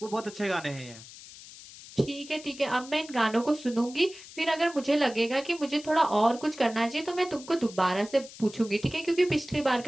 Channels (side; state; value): left; noise; hiss, 17 dB below the sound